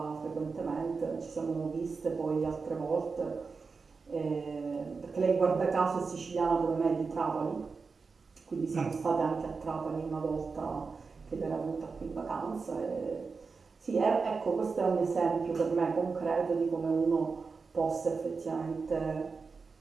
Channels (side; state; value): left; quieter; 4.7 dB